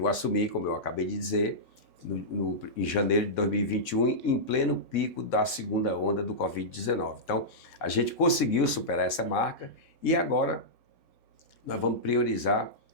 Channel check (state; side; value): normal; both; correlation -0.13